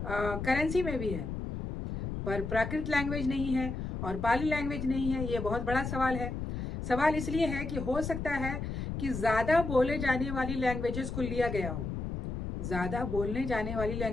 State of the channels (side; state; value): left; noise; rumble, 5 dB below the sound